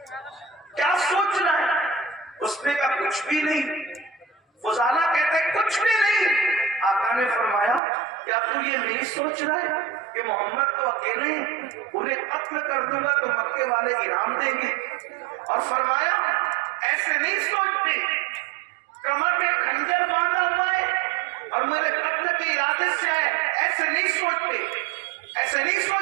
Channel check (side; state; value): left; drops out; at 7.8 s